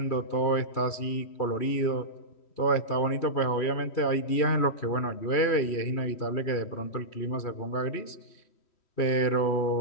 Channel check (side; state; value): right; late; 3.1 ms